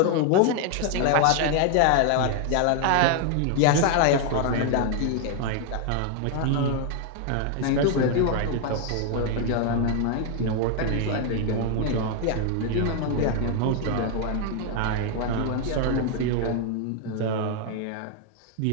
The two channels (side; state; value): both; different; correlation 0.00